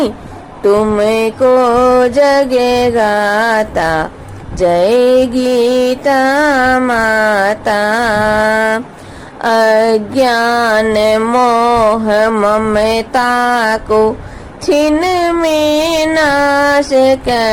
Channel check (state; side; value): identical; both; correlation 1.00